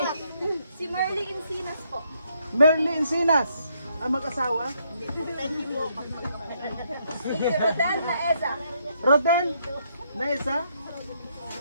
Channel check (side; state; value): both; inverted; correlation -0.73